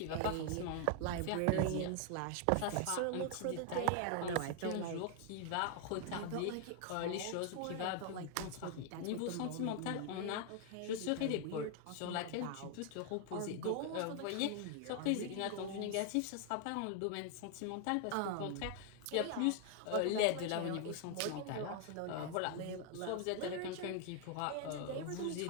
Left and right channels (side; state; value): both; different; correlation 0.00